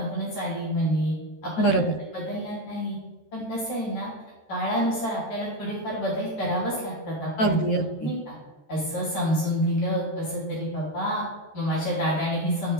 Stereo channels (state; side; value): late; right; 13 ms